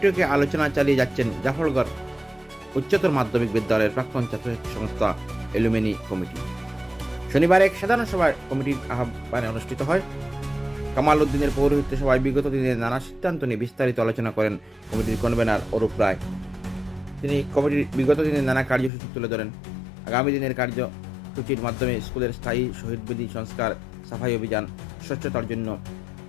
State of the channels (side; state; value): right; drops out; at 18.9 s